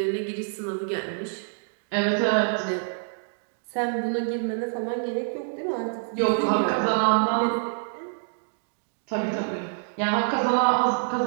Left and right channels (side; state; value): left; silent; digital silence